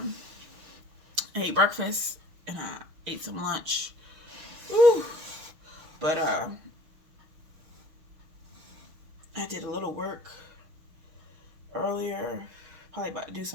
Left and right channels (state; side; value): late; left; 6.4 ms